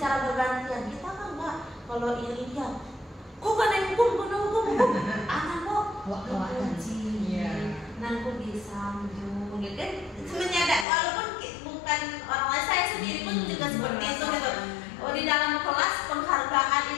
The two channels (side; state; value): right; drops out; at 10.9 s